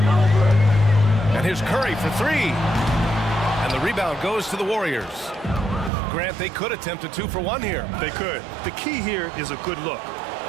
And here's Curry for 3. And the rebound goes to the Warriors. Grant, they could attempt a 2-for-1 here. They could. The key here is a good look.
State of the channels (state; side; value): drops out; left; at 5.9 s